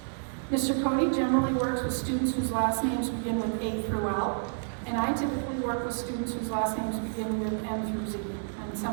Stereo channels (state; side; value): silent; left; digital silence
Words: Mr. Cody generally works with students whose last names begin with A through L, and I typically work with students whose last names begin with M through Z, and